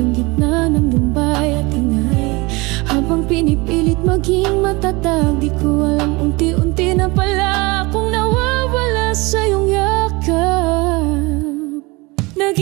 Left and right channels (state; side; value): quieter; left; 24.6 dB